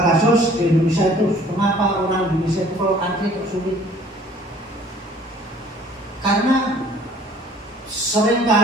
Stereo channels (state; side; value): normal; both; correlation 0.54